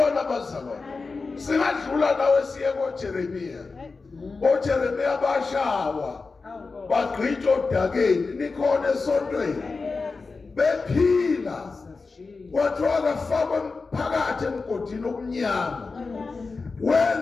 abazalwane. Singadlula nawe siye koJeremiya. OJeremiya bashawa. Bagqitshwa odakeni nikhona esontweni. Bephila. Kwathiwa kafakwe phakathi emgodini omnyama.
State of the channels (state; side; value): quieter; right; 4.2 dB